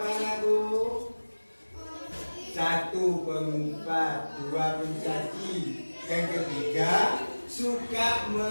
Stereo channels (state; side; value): inverted; both; correlation -1.00